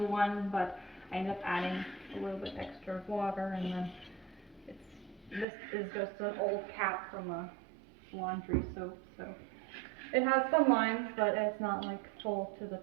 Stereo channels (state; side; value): drops out; left; at 5.5 s